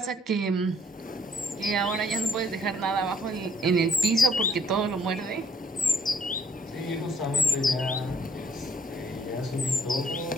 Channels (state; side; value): normal; both; correlation 0.65